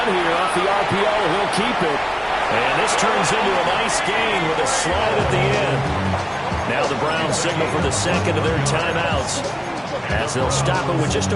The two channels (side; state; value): both; identical; correlation 1.00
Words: here off the RPO. He'll keep it. And this turns into a nice gain with a slide at the end. Now the Browns signal for the second of their timeouts, as they'll stop it with just